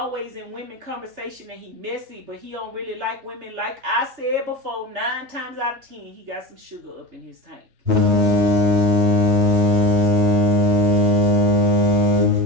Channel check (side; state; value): left; late; 3.3 ms